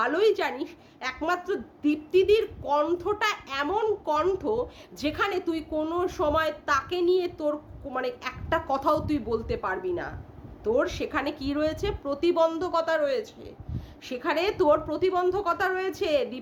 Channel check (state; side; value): identical; both; correlation 1.00